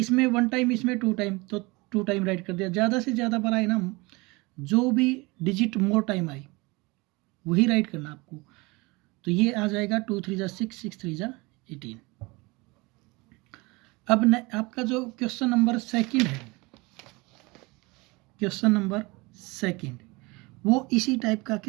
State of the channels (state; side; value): quieter; left; 24.8 dB